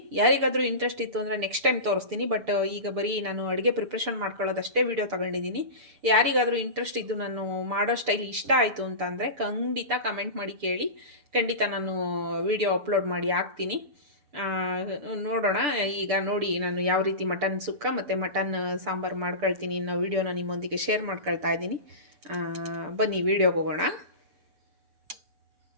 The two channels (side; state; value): left; late; 6.8 ms